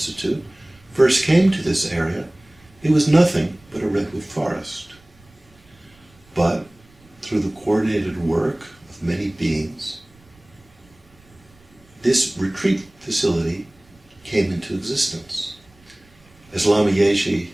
first came to this area, it was nothing but a redwood forest. But through the coordinated work of many beings, this retreat facility came into existence. As Lama Yeshe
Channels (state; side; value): noise; right; rumble, 29 dB below the sound